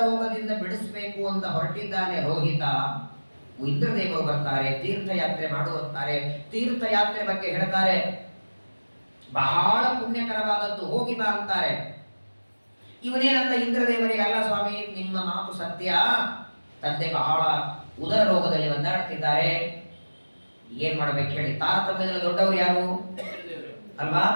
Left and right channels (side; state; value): both; inverted; correlation -1.00